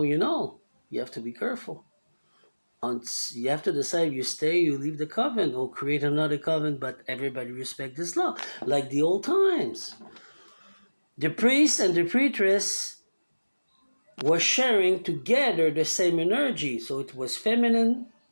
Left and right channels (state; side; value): inverted; both; correlation -1.00